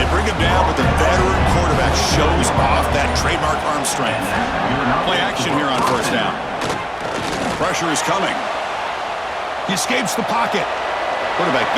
bring him down, but the veteran quarterback shows off that trademark arm strength. Play action here on first down. Pressure is coming. He escapes the pocket. Quarterback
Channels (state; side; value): identical; both; correlation 1.00